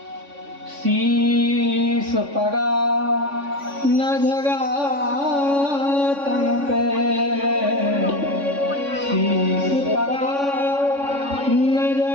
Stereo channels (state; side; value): late; left; 3.5 ms